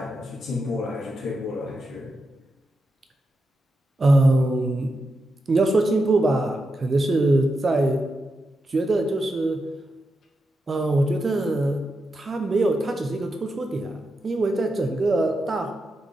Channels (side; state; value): both; normal; correlation 0.87